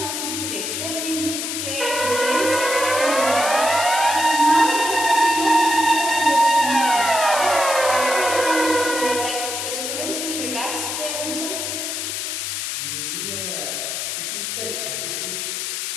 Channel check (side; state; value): left; noise; hiss, 3 dB below the sound